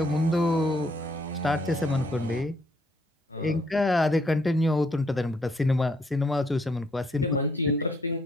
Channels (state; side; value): normal; both; correlation 0.68